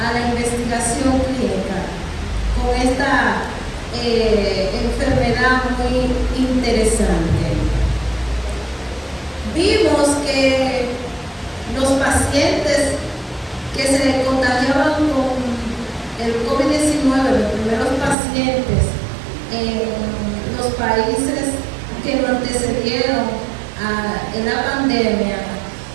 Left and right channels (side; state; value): left; drops out; at 18.2 s